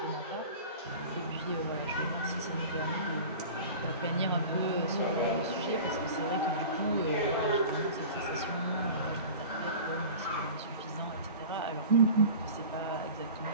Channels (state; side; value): inverted; both; correlation -0.38